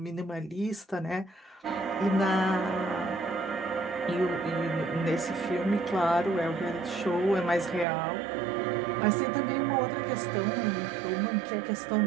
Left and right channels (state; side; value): drops out; left; at 7.9 s